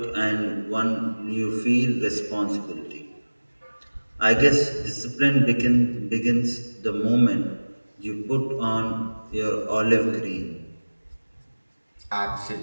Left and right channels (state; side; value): inverted; both; correlation -1.00